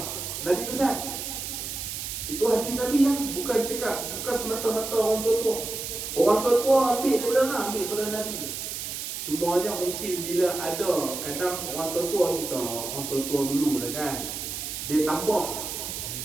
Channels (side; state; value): right; noise; hiss, 6 dB below the sound